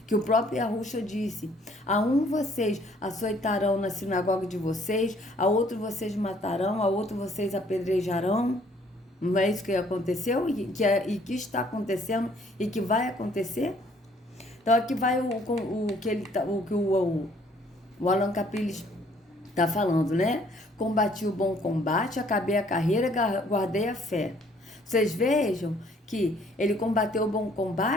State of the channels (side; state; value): both; normal; correlation 0.62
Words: Que o próprio Yahusha disse, a um vocês açoitarão na sinagoga de vocês, a outro vocês matarão, a outro vocês apedrejarão. Não é isso que aconteceu e que está acontecendo e que vai acontecer? Então aqui vai o que o Alan Capriles está falando, né? Combati o bom combate, acabei a carreira, guardei a fé. Vocês vejam que ele combateu o bom